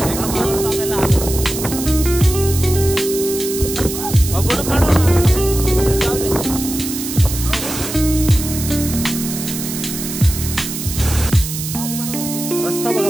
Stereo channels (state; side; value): noise; right; hiss, 7 dB below the sound